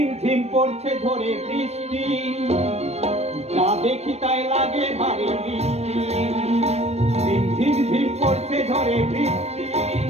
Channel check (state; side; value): late; left; 0.31 ms